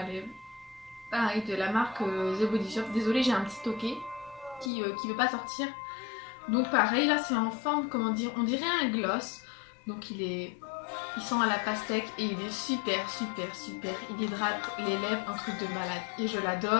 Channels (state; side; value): drops out; right; at 4.7 s